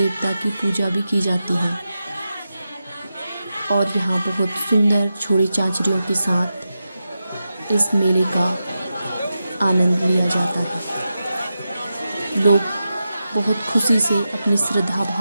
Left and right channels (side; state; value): both; inverted; correlation -0.90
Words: की पूजा भी की जाती है। और यहाँ बहुत सुंदर छोड़ी चांचरियों के साथ इस मेले का आनंद लिया जाता है। लोग बहुत खुशी से अपनी श्रद्धा